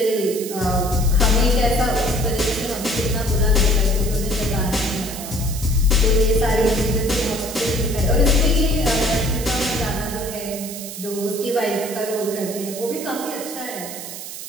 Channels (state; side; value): noise; right; hiss, 10 dB below the sound